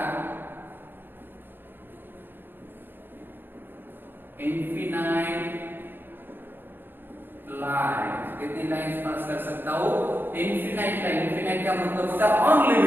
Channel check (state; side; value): late; left; 0.097 ms